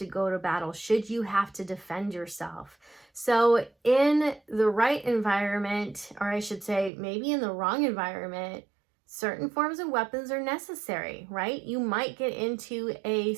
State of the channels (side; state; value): left; drops out; at 6.9 s